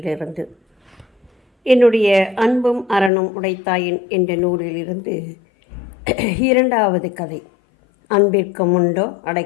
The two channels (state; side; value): drops out; right; at 3.1 s